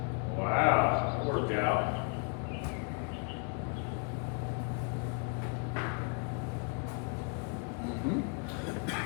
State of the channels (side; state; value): right; quieter; 35.3 dB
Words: wow, that worked out.